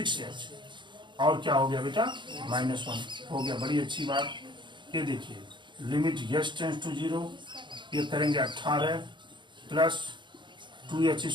और क्या हो गया बेटा -1 हो गया। बड़ी अच्छी बात। ये देखिए लिमिट एच टेंस टू 0, ये करेंगे 18 plus 2h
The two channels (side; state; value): left; late; 0.23 ms